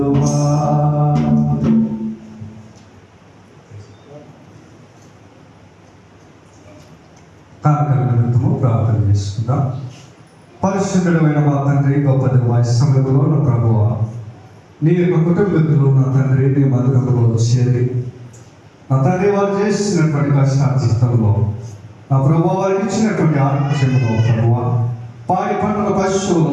కాలకలనము ప్రార్థన చేసుకుందాం. పరిశుద్ధుడైన మా తండ్రి, గొప్ప సమయంలో నా ప్రభువా, నీ యొక్క కుటుంబీకులు నా తండ్రి నీ మందిరంలో చేరి నా తండ్రి వారు చేసినటువంటి కష్టార్జితంలో నా ప్రభువా వారికి ఇచ్చినటువంటి ఆరోగ్యంలో ప్రభువా పాడి పంటల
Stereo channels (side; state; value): both; identical; correlation 1.00